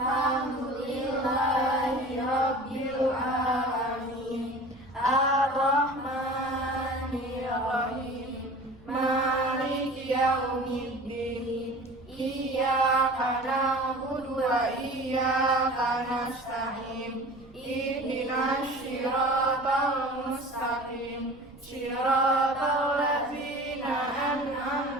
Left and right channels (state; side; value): noise; right; rumble, 24 dB below the sound